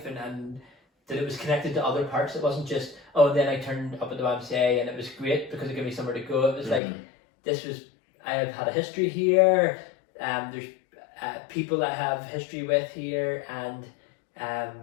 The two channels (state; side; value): drops out; right; at 6.8 s